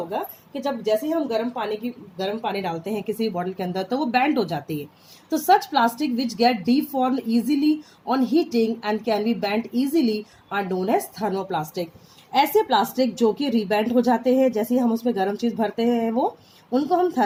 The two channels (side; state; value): both; identical; correlation 1.00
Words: कि जब जैसे ही हम गर्म पानी डालते हैं किसी बॉटल के अंदर तो वो बेंड हो जाती है. तो such plastic which get deformed easily on heating and can be bend easily are known as thermoplastic. ऐसे प्लास्टिक जो कि रीबेंड हो जाते हैं जैसे ही हम उसमें गर्म चीज भरते हैं वो उनको हम